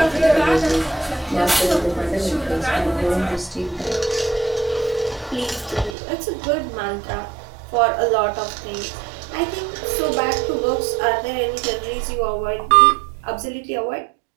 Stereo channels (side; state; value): left; drops out; at 6.0 s